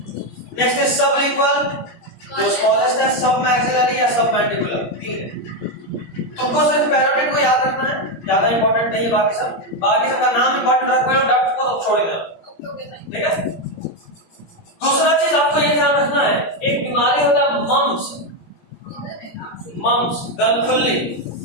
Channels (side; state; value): right; late; 17 ms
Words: Next is sublingual, जो स्मॉलेस्ट है, सब मैक्सिलरी या सब मैंडिबुलर। तुमको सिर्फ पैरोटिड को याद रखना है, ज्यादा इंपॉर्टेंट नहीं है बाकी सब। बाकी सबका नाम इंपॉर्टेंट रखो, डक्ट को तो छोड़ देना, ठीक है। दूसरा चीज आपको ये ध्यान रखना है, एक बीमारी होता है मम्स, गलफुल्ली,